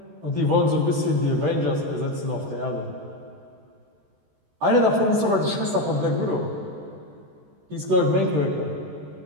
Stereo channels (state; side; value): late; left; 14 ms